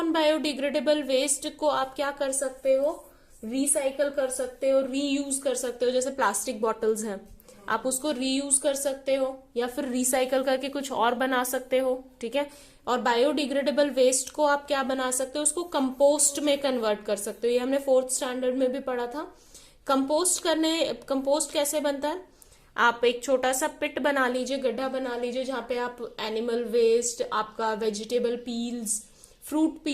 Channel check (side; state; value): both; identical; correlation 1.00